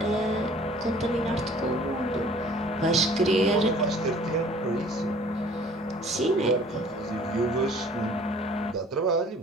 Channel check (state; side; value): normal; both; correlation 0.52